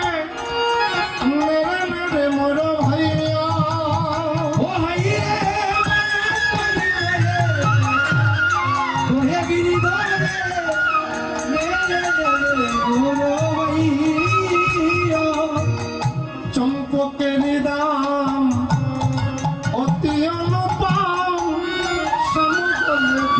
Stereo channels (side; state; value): both; identical; correlation 1.00